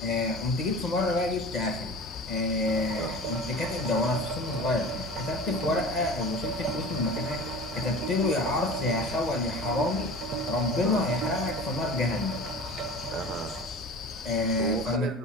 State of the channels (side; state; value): both; normal; correlation 0.37